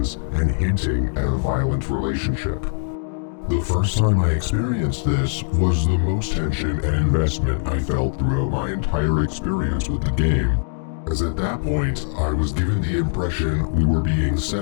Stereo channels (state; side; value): silent; right; digital silence